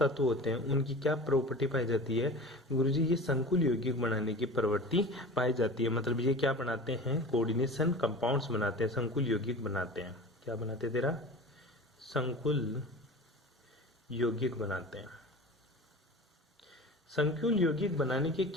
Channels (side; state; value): both; normal; correlation 0.36